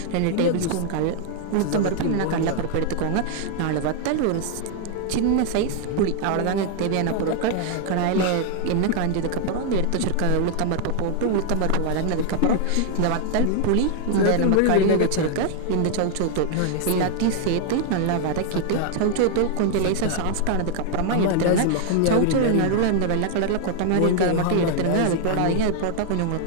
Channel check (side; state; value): both; different; correlation 0.00